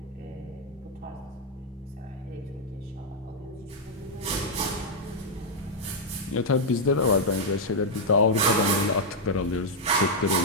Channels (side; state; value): both; normal; correlation -0.03